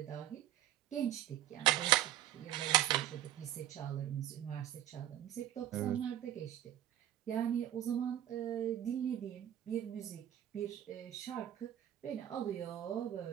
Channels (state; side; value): quieter; left; 11.9 dB